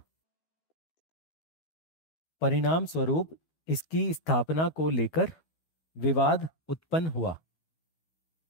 परिणाम स्वरूप इसकी स्थापना को लेकर विवाद उत्पन्न हुआ,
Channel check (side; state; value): right; late; 12 ms